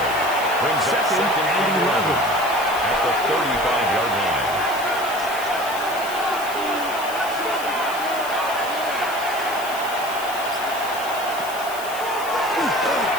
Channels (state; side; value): noise; left; hiss, 13 dB below the sound